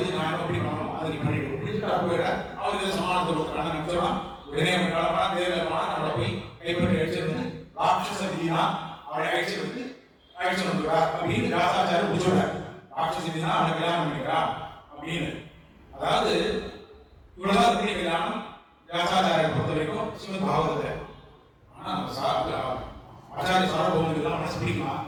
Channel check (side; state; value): both; identical; correlation 1.00